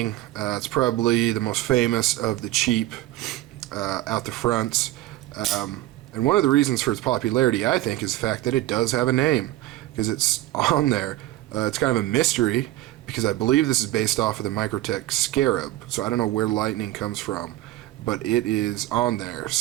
It's probably the most famous of the cheap out the fronts. And one of the reasons for its popularity, I think, is the fact that it does have a name, because it's on there. It's kind of a mystery, because I believe this is based off of the Microtech Scarab. So I don't know where Lightning comes from, but it is on there.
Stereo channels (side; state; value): left; quieter; 15.7 dB